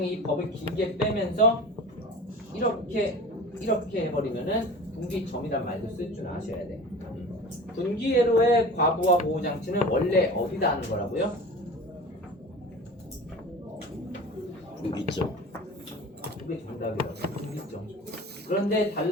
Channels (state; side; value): normal; both; correlation 0.37